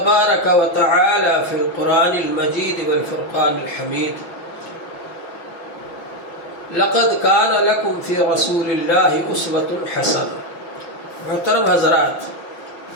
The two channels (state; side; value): late; right; 5.9 ms